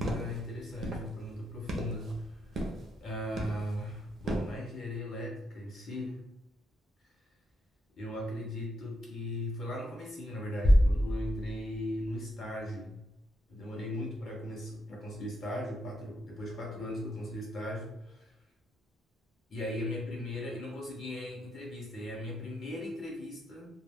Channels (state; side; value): normal; both; correlation 0.81